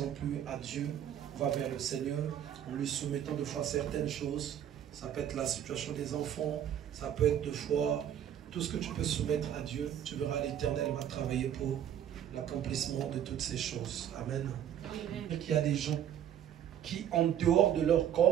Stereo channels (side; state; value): left; quieter; 10.2 dB